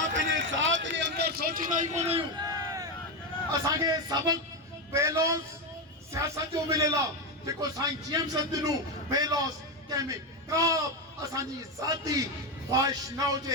پہنے ذات کے اندر سوچی نہیں کونے ہوں. اساں کے سبق بیلوس سیاست جو ملے لا جکو سائیں جیم سندنوں بیلوس کہمیں کاب اساں جی ذاتی خواہش نہ ہو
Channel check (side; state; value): both; normal; correlation 0.11